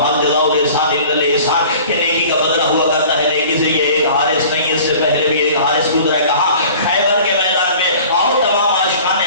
حل جزاء الاحسان الا الاحسان کہ نیکی کا بدلہ ہوا کرتا ہے نیکی سے. یہ ایک حارث نہیں، اس سے پہلے بھی ایک حارث گزرا ہے. کہاں؟ خیبر کے میدان میں. آؤ تمام عاشقان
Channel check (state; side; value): inverted; both; correlation -0.46